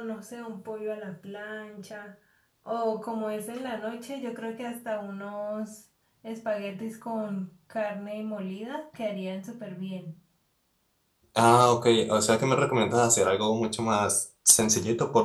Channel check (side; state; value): both; identical; correlation 1.00